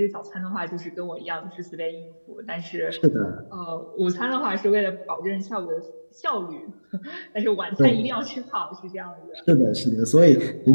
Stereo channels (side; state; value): both; inverted; correlation -1.00